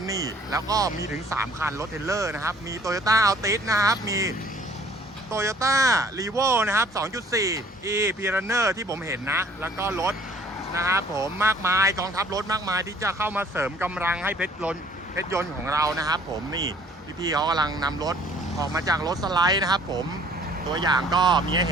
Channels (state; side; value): normal; both; correlation 0.56